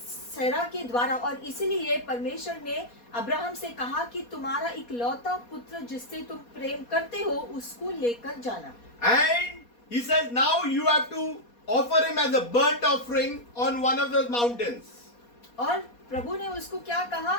के द्वारा, और इसीलिए परमेश्वर ने अब्राहम से कहा कि तुम्हारा इकलौता पुत्र जिससे तुम प्रेम करते हो उसको लेकर जाना। And he says, now you have to offer him as a burnt offering on one of those mountains. और प्रभु ने उसको क्या कहा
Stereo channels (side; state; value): right; late; 4.2 ms